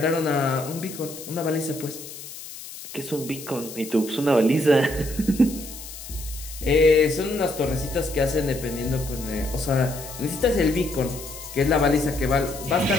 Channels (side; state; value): left; noise; hiss, 13 dB below the sound